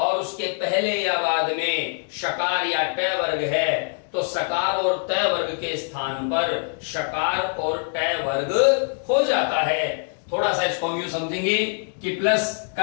उसके पहले या बाद में शकार या टवर्ग है, तो सकार और ट वर्ग के स्थान पर शकार और ट वर्ग हो जाता है। थोड़ा सा इसको हम यूं समझेंगे कि प्लस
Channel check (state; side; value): silent; right; 56 dB below the other